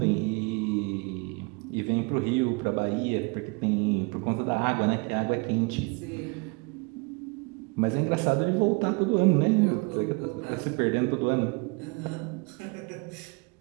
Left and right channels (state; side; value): quieter; left; 30.5 dB